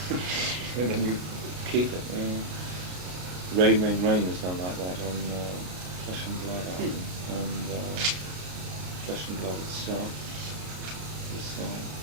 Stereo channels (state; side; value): late; left; 33 ms